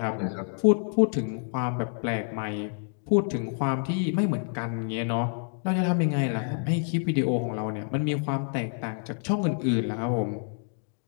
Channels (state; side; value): silent; right; 55 dB below the other